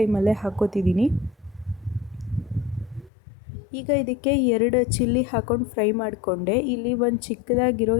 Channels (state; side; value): drops out; right; at 3.1 s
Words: ಹಾಕೋತಿದ್ದೀನಿ. ಈಗ ಇದಕ್ಕೆ 2 ಚಿಲ್ಲಿ ಹಾಕೊಂಡು ಫ್ರೈ ಮಾಡಿಕೊಂಡೆ. ಇಲ್ಲಿ ಒಂದು ಚಿಕ್ಕದಾಗಿರೋ